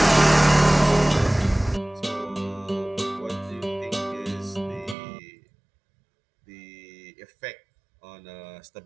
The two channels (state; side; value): drops out; left; at 5.0 s